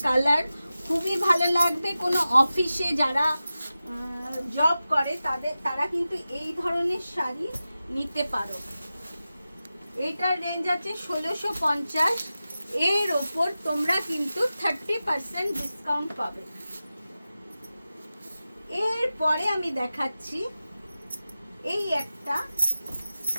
কালার খুবই ভালো লাগবে। কোনো অফিসে যারা জব করে তারা কিন্তু এই ধরনের শাড়ি নিতে পারো। এটার রেঞ্জ আছে 1650, এর ওপর তোমরা কিন্তু 30% ডিসকাউন্ট পাবে। এরপরে আমি দেখাচ্ছি এই একটা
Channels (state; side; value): inverted; both; correlation -0.94